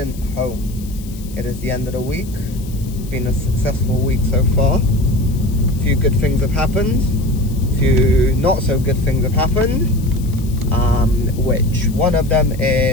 home. It is the end of the week. It's been a successful week so far. A few good things have happened. A few not so good things have happened. Which one of them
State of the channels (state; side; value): noise; left; hiss, 20 dB below the sound